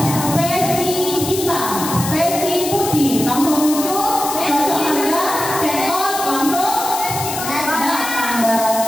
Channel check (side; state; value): left; noise; hiss, 6 dB below the sound